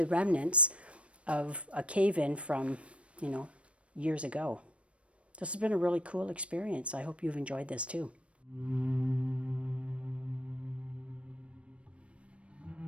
remnants of a cave-in from, years ago. This has been a really cool experience. I hope you've enjoyed this too.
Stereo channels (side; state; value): left; late; 0.061 ms